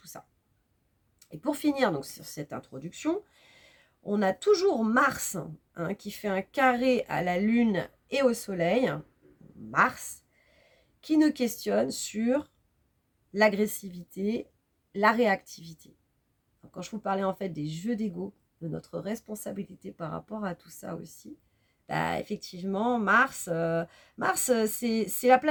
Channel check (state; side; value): identical; both; correlation 1.00